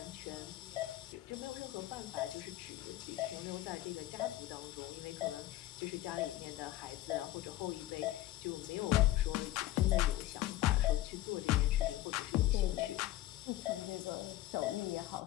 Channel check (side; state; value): right; quieter; 15.2 dB